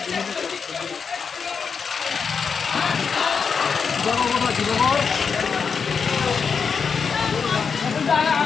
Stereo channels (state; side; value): quieter; right; 5.9 dB